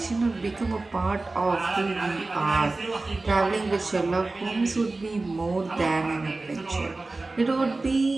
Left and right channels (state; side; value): quieter; left; 3.3 dB